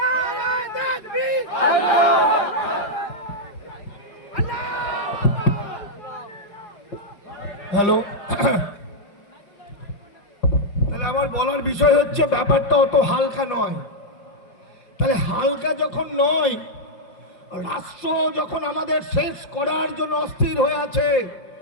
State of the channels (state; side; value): late; right; 5.3 ms